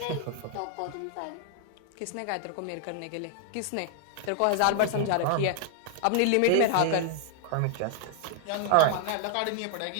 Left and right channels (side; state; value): both; different; correlation 0.00